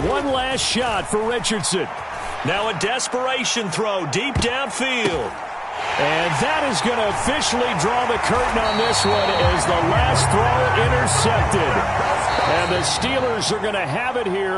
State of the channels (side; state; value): both; identical; correlation 1.00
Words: One last shot for Richardson. Now a desperation throw deep downfield. And that is going to officially draw the curtain on this one as the last throw intercepted. And the Steelers are going to have it